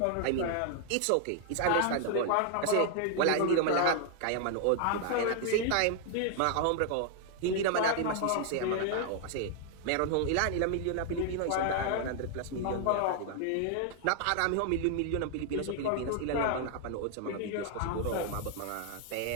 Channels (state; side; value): different; both; correlation 0.00